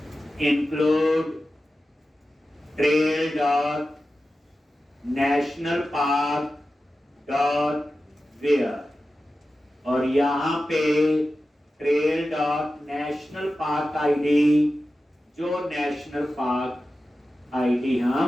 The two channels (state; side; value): normal; both; correlation 0.93